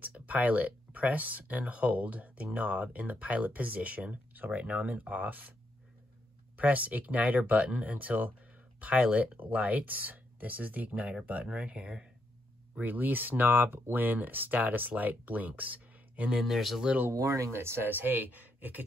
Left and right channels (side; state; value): both; normal; correlation 0.78